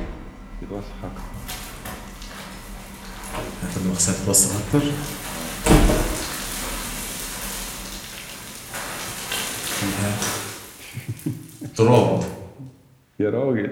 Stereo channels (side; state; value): both; identical; correlation 1.00